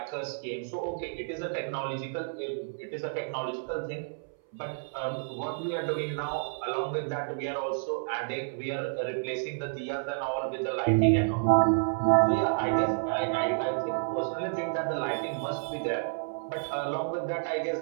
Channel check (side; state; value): left; silent; 58 dB below the other